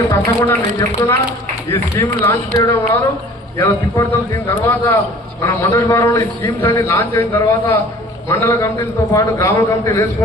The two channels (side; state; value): both; normal; correlation 0.48